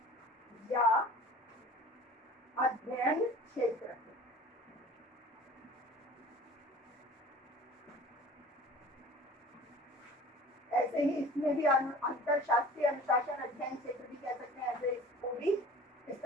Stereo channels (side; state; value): both; normal; correlation 0.44